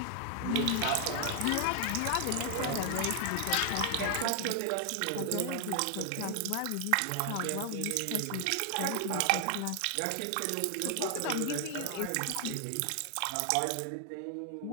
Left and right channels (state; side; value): different; both; correlation 0.00